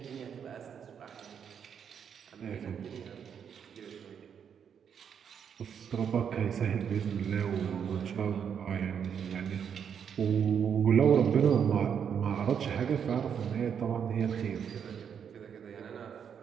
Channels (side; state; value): left; quieter; 7.7 dB